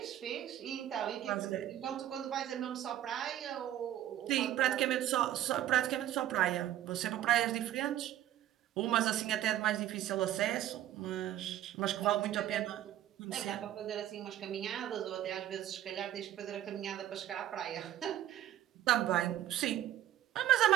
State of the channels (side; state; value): left; quieter; 12.4 dB